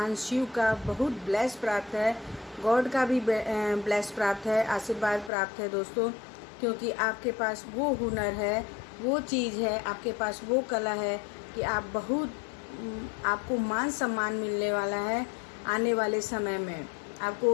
शिव का बहुत ब्लेस प्राप्त है, गॉड का भी ब्लेस प्राप्त है, आशीर्वाद प्राप्त है दोस्तों। क्योंकि आपके पास वो हुनर है, वो चीज़ है, आपके पास वो कला है कि आप बहुत आपको मान सम्मान मिलने वाला है। आने वाले समय में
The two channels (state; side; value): drops out; right; at 5.3 s